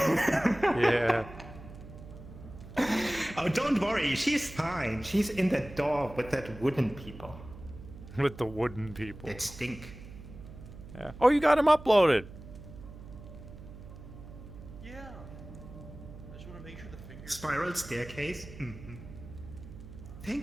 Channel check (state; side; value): noise; right; hum, 15 dB below the sound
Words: Oh, don't worry, she's fine. She's in the door with that wooden people. With the wooden people. That stink. Yeah. Oh, you got him uploaded. Yeah. I just want to make sure the fingers. Spiral staircase? Mm-hmm.